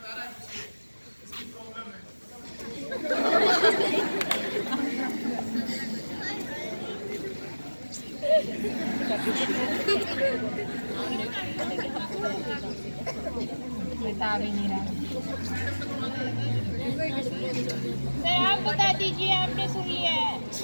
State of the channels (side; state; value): both; inverted; correlation -1.00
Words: बता भी नहीं रहा। सर आप बता दीजिए, आपने सुन लिया है।